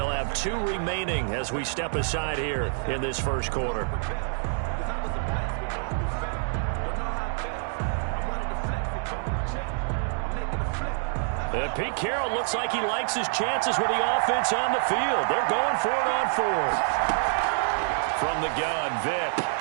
have 2 remaining as we step aside here in this first quarter. Pete Carroll looks like he likes his chances with the offense on the field. They're going for it on 4th. From the gun, Vick.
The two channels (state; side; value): silent; left; digital silence